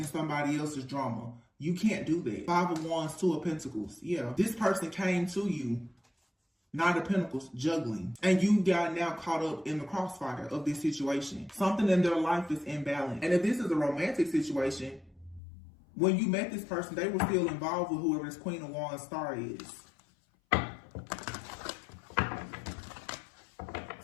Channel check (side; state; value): right; drops out; at 15.4 s